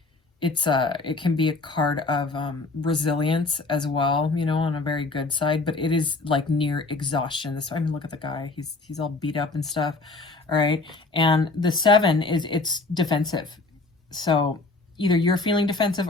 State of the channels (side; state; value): right; quieter; 3.5 dB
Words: It can be a card of resilience as well, you know, on a very good side, but it is like near exhaustion. I mean, look at the guy. He's all beat up and stuff. All right, and the 7 it's defensive. So either you're feeling defensive